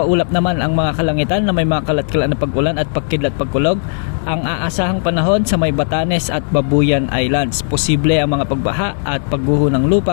naman ang mga kalangitan na may mga kalat-kalat na pag-ulan at pagkidlat pagkulog ang aasahang panahon sa may Batanes at Babuyan Islands. Posible ang mga pagbaha at pagguho ng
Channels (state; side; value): silent; right; digital silence